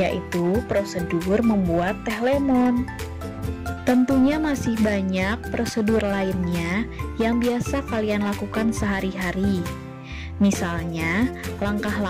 prosedur membuat teh lemon. Tentunya masih banyak prosedur lainnya yang biasa kalian lakukan sehari-hari. Misalnya,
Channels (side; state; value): both; identical; correlation 1.00